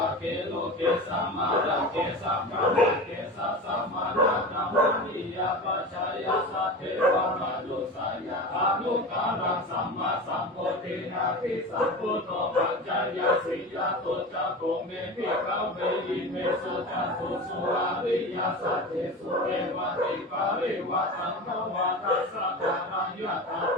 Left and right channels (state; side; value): normal; both; correlation 0.29